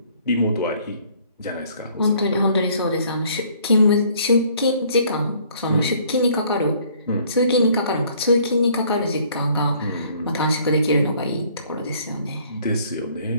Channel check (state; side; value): inverted; both; correlation -0.59